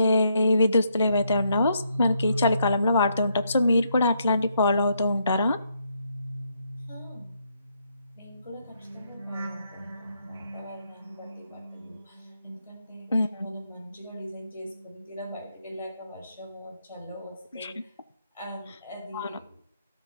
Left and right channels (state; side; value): inverted; both; correlation -0.76